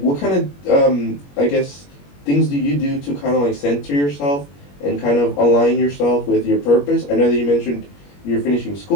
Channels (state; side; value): late; right; 21 ms